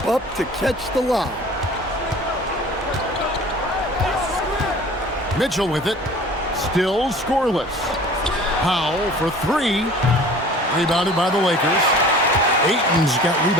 up to catch the lob. Mitchell with it. Still scoreless. Powell for 3. Rebounded by the Lakers. Ayton's got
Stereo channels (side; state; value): both; normal; correlation 0.45